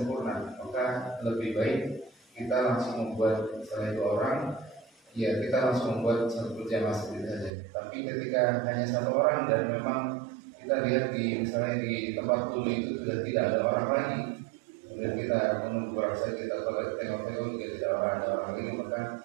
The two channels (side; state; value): left; drops out; at 7.5 s